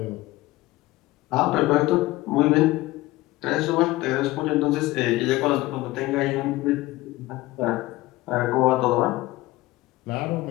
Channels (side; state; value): right; quieter; 18.7 dB